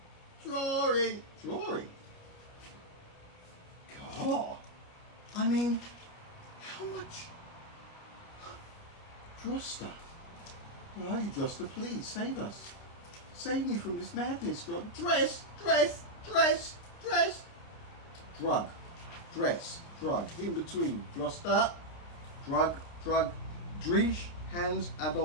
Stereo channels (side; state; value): right; late; 29 ms